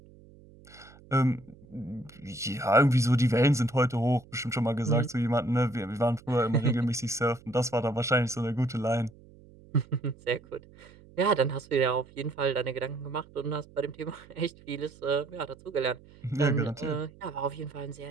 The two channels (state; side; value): noise; right; hum, 24 dB below the sound